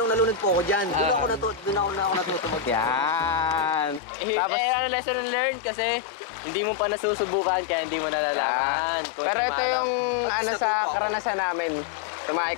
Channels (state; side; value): drops out; right; at 4.0 s